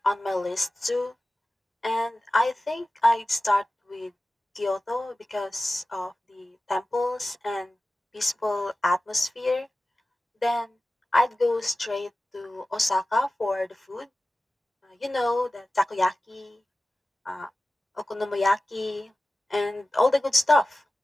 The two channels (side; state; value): both; normal; correlation 0.96